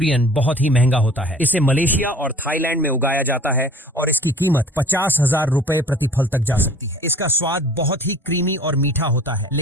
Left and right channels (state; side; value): normal; both; correlation 0.47